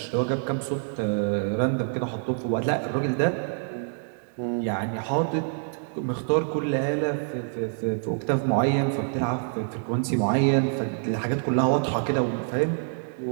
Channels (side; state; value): left; silent; 59 dB below the other